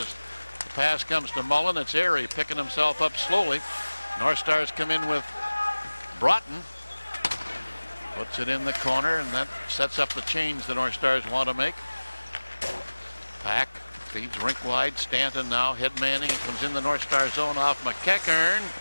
the pass comes to Mullen. It's Airy picking himself up slowly. North Stars come in with Broughton. Puts it in the corner, and that sets up the change the North Stars want to make. Pack feeds rink wide. Stanton now head manning. It comes in the North Star zone off McEachern,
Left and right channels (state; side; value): inverted; both; correlation -1.00